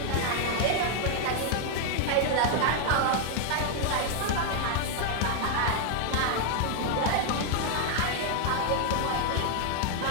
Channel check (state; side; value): different; both; correlation 0.00